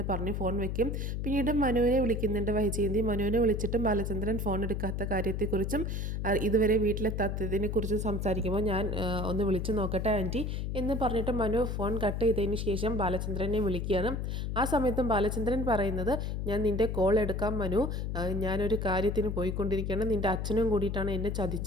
പറഞ്ഞ് ഫോൺ വയ്ക്കും. പിന്നീട് മനുവിനെ വിളിക്കുന്നുണ്ട് വൈജയന്തി. മനുവിനെ വിളിച്ചിട്ടും ബാലചന്ദ്രൻ ഫോൺ എടുക്കാത്ത കാര്യത്തെക്കുറിച്ചും ഇതുവരെ വീട്ടിലെത്താത്തതിനെക്കുറിച്ചും സംസാരിക്കുമ്പോൾ ഞാൻ ഒന്ന് വിളിച്ചു നോക്കട്ടെ ആൻറ്റി എന്ന് പറഞ്ഞിട്ട് മനു ഫോൺ കട്ട് ചെയ്തതിന് ശേഷം ബാലചന്ദ്രനെ വിളിക്കുകയാണ്. ആ സമയത്തും ബാലചന്ദ്രൻ പറയുന്നത്, ഞാൻ നിൻ്റെ കോൾ എടുക്കാം മനു, ഞാനൊരു കാര്യത്തിന് പോയിക്കൊണ്ടിരിക്കുകയാണ്, നിൻ്റെ അച്ഛനും കൂടിയിട്ടാണ് എന്നെ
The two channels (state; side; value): noise; left; hum, 2 dB below the sound